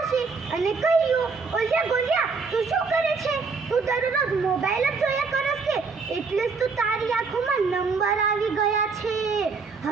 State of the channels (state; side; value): quieter; left; 4.7 dB